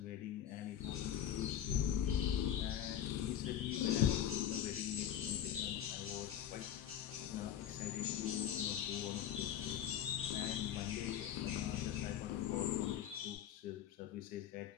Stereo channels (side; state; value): right; quieter; 10.4 dB